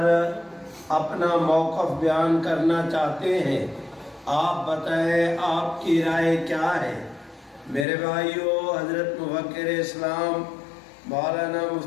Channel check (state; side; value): drops out; right; at 7.9 s